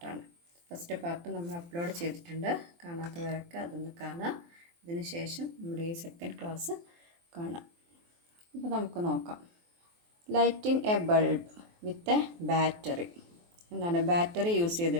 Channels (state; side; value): late; left; 23 ms